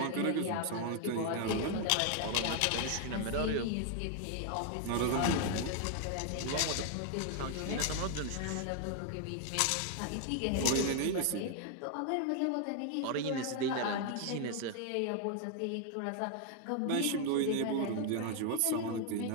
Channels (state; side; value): different; both; correlation 0.00